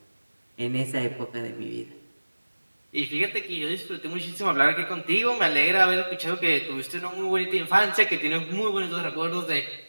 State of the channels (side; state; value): both; inverted; correlation -1.00